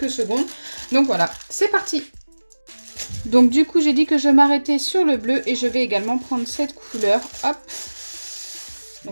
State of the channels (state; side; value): inverted; both; correlation -1.00